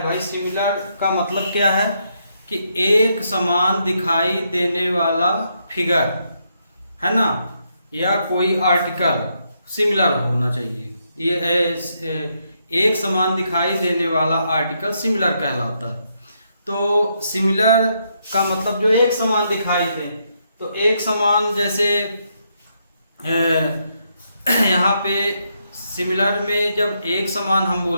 भाई। सिमिलर का मतलब क्या है कि एक समान दिखाई देने वाला फिगर है ना, या कोई आर्टिकल सिमिलर होना चाहिए। ये एक समान दिखाई देने वाला आर्टिकल सिमिलर कहलाता है। तो सिमिलर का मतलब जो एक समान दिखाई दे, तो एक समान जैसे यहाँ पे सिमिलर में जब एक समान हम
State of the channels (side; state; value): both; inverted; correlation -0.78